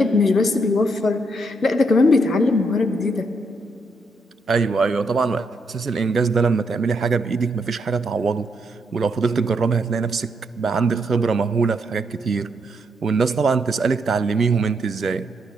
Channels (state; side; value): normal; both; correlation 0.77